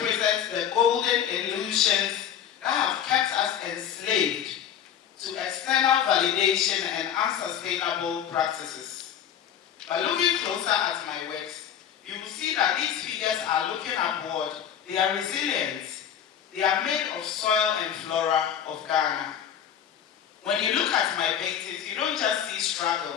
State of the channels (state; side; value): quieter; right; 9.2 dB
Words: the golden illusions that have kept us enslaved to external validation and unsustainable practices. By looking closer at my works, you will see that these figures are looking upward. They are resilient. They are made of soil and flora of Ghana. When you look at my paintings, you don't just see